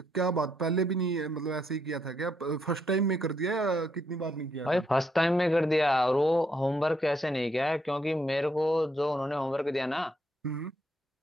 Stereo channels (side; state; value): both; normal; correlation 0.75